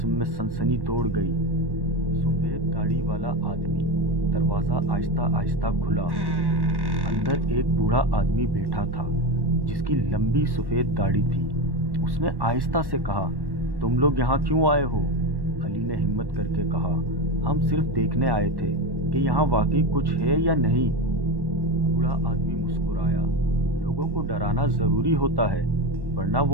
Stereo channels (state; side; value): late; left; 1.1 ms